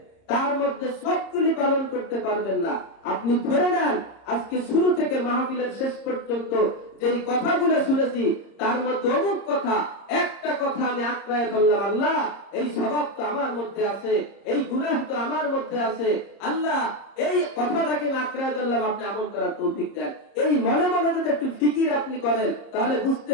তার মধ্যে সবগুলি পালন করতে পারবেন না। আপনি ধরে নেন আজকে শুরু থেকে মাহফিলের শেষ পর্যন্ত যেই কথাগুলো শুনেছি তার মধ্যে অমুক কথা, একটা কথা আমি আঁকড়ায় ধরলাম, আল্লাহ এই স্বভাব তো আমার মধ্যে আছে, এই গুনাহ তো আমার মধ্যে আছে, আল্লাহ এই কথাটাকে আঁকড়ায় ধরলাম, আপনি আমল করার তৌফিক দেন। এই মনে মনে যদি একটু ফিকির আপনি করেন তাহলে বুঝতে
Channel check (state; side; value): late; right; 30 ms